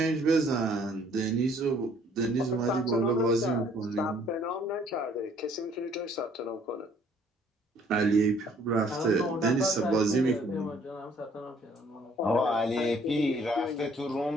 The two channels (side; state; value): both; normal; correlation 0.60